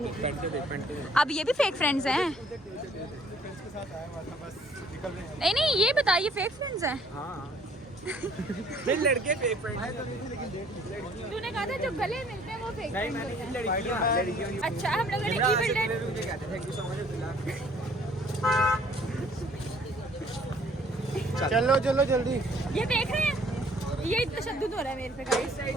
अब ये भी फेक फ्रेंड्स हैं? नहीं ये बताइए फेक फ्रेंड्स हैं? हाँ लड़के फेक फ्रेंड। तूने कहा था जो गले मिलते हैं वो फेक नहीं फ्रेंड्स मैंने होते हैं। लड़कियां अच्छा, हम लोगों ने event thank you so much. चलो चलो जल्दी। ये देख रहे हैं, ये तशद्दुद हो रहा है मेरे पे गाइस।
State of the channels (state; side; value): normal; both; correlation 0.59